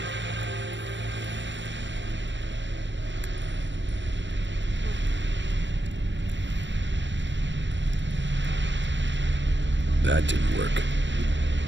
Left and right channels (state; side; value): late; left; 0.53 ms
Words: That didn't work.